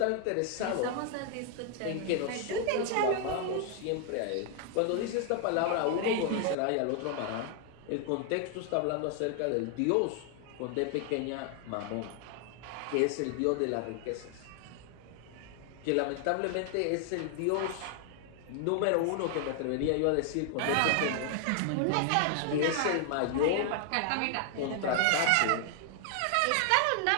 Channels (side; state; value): both; different; correlation 0.00